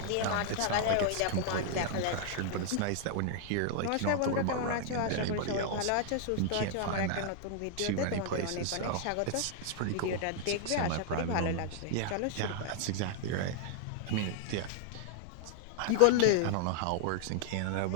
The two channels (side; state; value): both; different; correlation 0.00